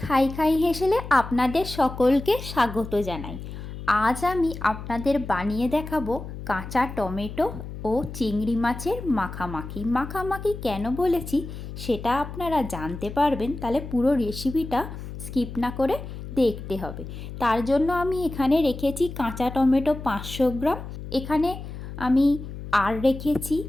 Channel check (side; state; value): left; noise; hum, 10 dB below the sound